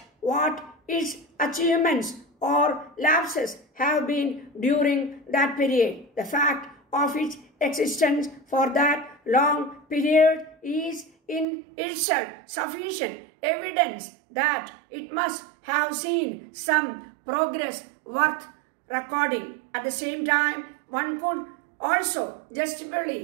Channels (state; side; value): drops out; left; at 11.5 s